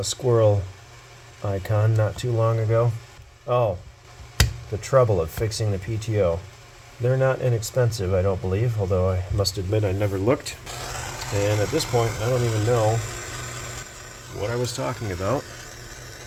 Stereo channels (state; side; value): identical; both; correlation 1.00